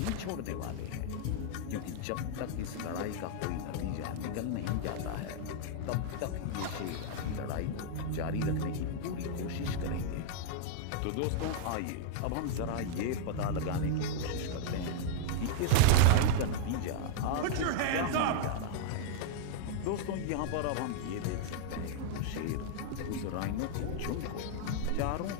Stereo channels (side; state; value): both; different; correlation -0.01